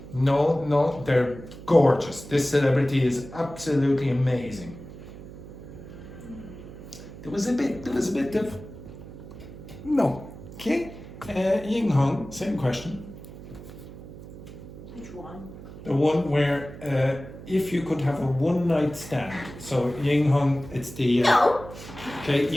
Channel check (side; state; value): right; noise; hum, 14 dB below the sound